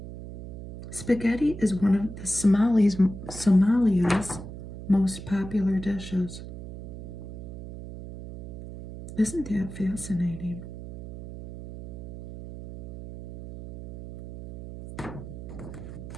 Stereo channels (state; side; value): noise; right; hum, 11 dB below the sound